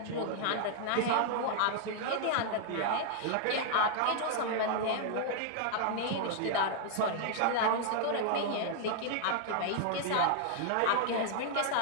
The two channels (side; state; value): both; different; correlation -0.01